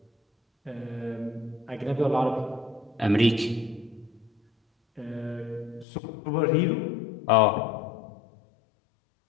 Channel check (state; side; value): drops out; right; at 5.9 s